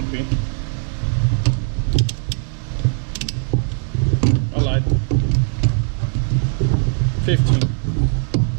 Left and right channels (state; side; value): silent; left; digital silence